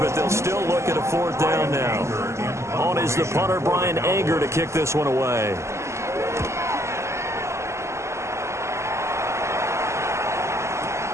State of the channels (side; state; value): left; late; 0.13 ms